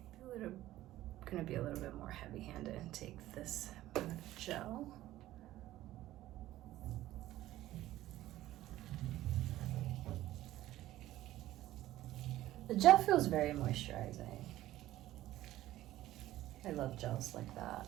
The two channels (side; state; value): left; quieter; 14.9 dB